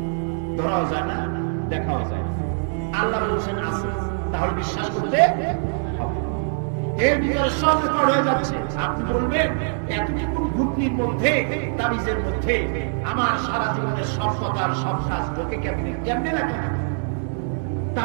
ধরাও যায় না, দেখাও যায় না। আল্লাহ বলছেন আছে, তাহলে বিশ্বাস করতে হবে। এর ভিতরে সব রেকর্ড হয়ে যাচ্ছে। আপনি বলবেন এতটুকু ঘুটলির মধ্যে, তাবিজের মধ্যে আমার সারা জীবনের সব কথার সব কাজ ঢোকে কেমনে? কেমনে লেখা?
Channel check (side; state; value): left; silent; digital silence